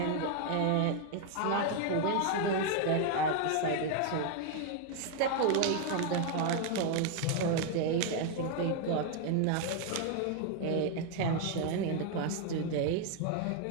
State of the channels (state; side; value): different; both; correlation 0.01